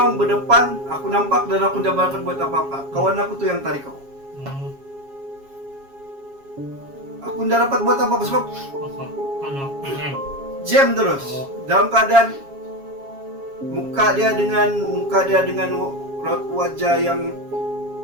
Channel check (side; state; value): left; late; 7.3 ms